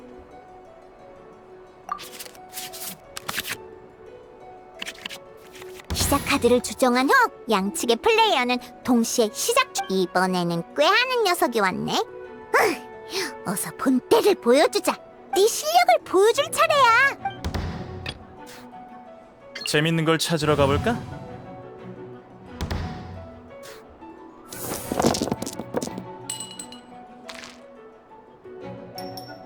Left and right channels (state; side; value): identical; both; correlation 1.00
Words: 시작 카드를 조정한 후 양측의 플레이어는 동시에 시작 중. 이번에는 꾀하는 녀석이 왔네. 어서 본때를 보여주자. 네 실력을 보여줄 차례야. 재밌는 걸 찾으러 가볼까?